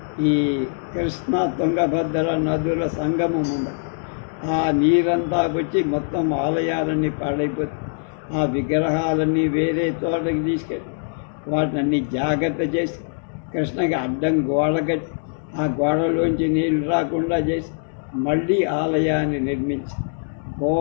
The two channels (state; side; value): silent; right; digital silence